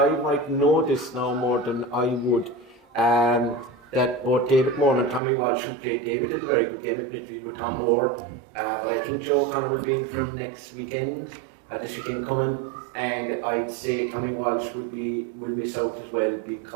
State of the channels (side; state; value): left; drops out; at 5.2 s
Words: might know this now more than I would. That both David Moore and Tommy Walsh, who played David, had a very good game at midfield with Tom Hoare. But I think Joe O'Connor will be in from next weekend, this weekend coming. And I'd say Tommy Walsh will miss out as well